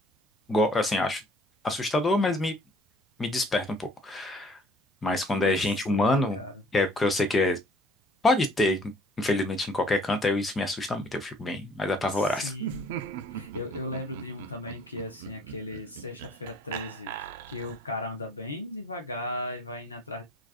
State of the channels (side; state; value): both; normal; correlation 0.56